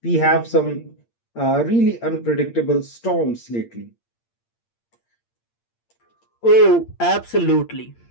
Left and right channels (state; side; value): late; right; 8.7 ms